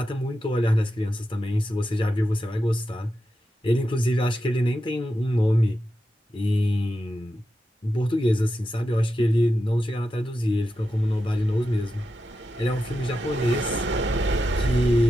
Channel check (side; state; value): both; normal; correlation 0.89